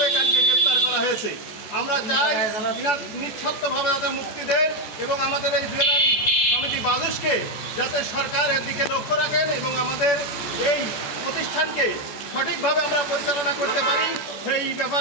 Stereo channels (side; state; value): right; late; 14 ms